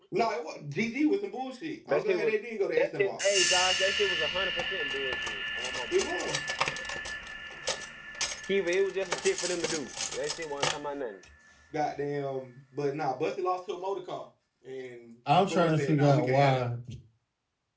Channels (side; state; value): both; identical; correlation 1.00